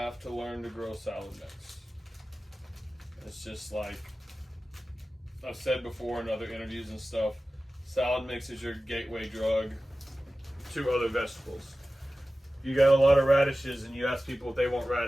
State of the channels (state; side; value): normal; both; correlation 0.96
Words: to learn to grow salad mix. It's just like I've said before in other interviews and stuff, salad mix is your gateway drug to other vegetables. You got a lot of radishes and you ask people if they want